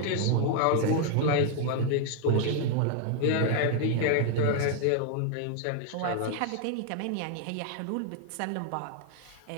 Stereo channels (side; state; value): both; different; correlation 0.00